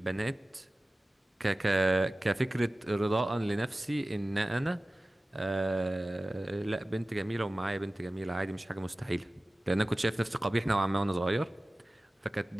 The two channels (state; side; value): normal; both; correlation 0.97